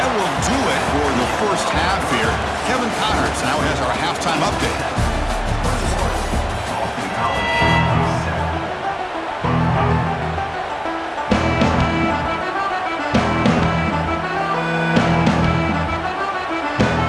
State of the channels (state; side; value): identical; both; correlation 1.00